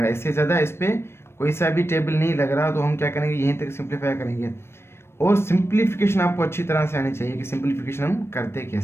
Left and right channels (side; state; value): right; late; 0.12 ms